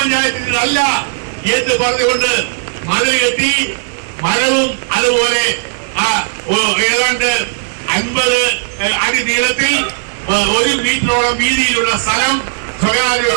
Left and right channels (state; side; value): silent; left; digital silence